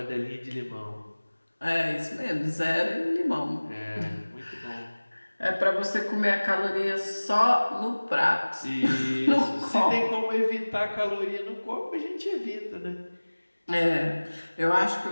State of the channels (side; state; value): both; inverted; correlation -1.00